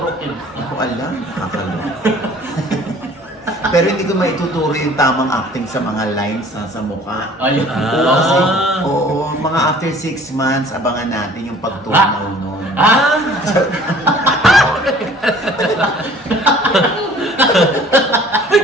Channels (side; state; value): both; normal; correlation 0.51